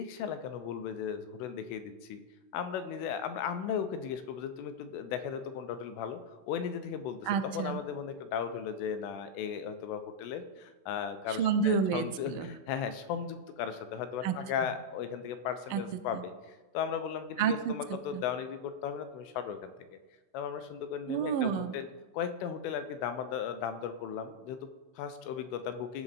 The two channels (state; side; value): late; right; 15 ms